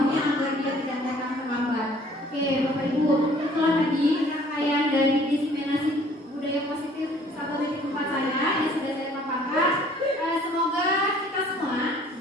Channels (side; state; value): both; normal; correlation 0.56